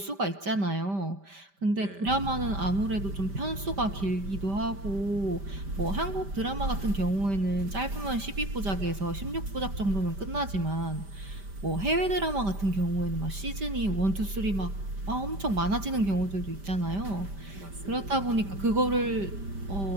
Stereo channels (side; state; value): left; late; 5.1 ms